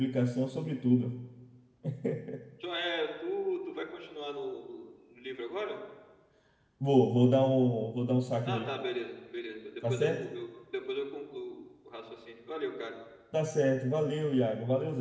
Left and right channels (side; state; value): both; identical; correlation 1.00